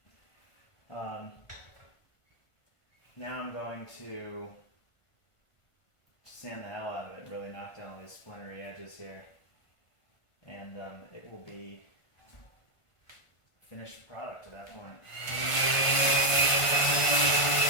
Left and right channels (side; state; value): right; late; 1.5 ms